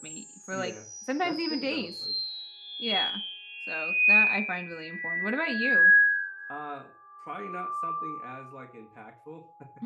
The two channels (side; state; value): both; identical; correlation 1.00